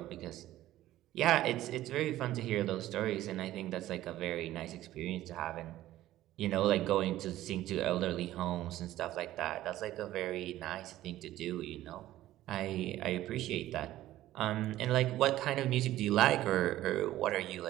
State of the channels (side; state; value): left; quieter; 14.6 dB